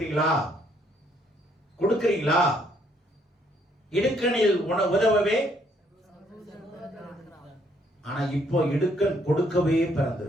கொடுக்கிறீங்களா? இடுக்கணில் உதவவே, ஆனா இப்போ இடுக்கன் கொடுக்கவே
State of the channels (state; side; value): normal; both; correlation 0.68